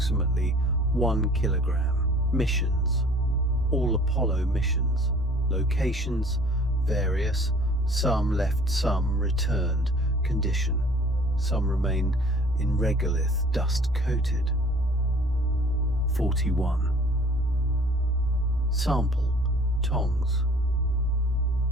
1 kilogram. Missions: all Apollo missions. Locations: various, some left, some returned. Condition: some remain in regolith, dust-coated. 41. Sample: tongs.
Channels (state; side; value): normal; both; correlation 0.51